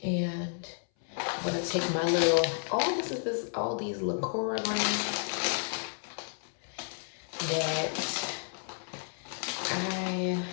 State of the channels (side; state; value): right; silent; 57 dB below the other